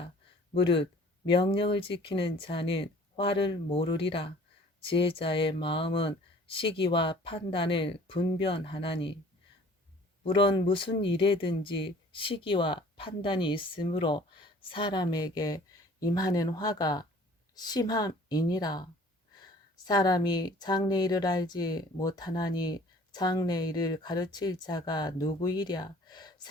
무릇 명령을 지키는 자는 화를 모르리라. 지혜자의 마음은 시기와 판단을 분별하나니 물론 무슨 일에든지 시기와 판단이 있으므로 사람에게 임하는 화가 심함이니라. 사람이 장래일을 알지 못하나니 장래일을 가르칠 자가 누구이랴.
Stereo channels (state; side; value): normal; both; correlation 0.51